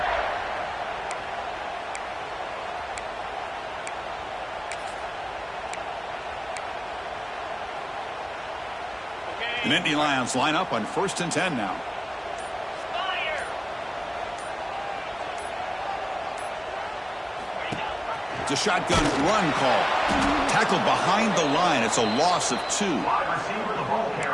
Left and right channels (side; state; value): both; identical; correlation 1.00